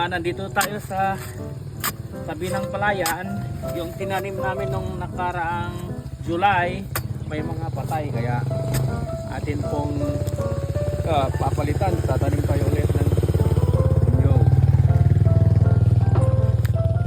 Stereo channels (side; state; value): both; identical; correlation 1.00